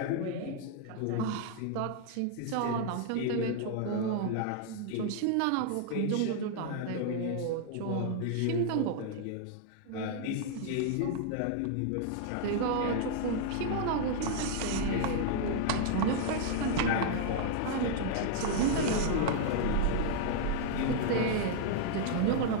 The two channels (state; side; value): different; both; correlation -0.01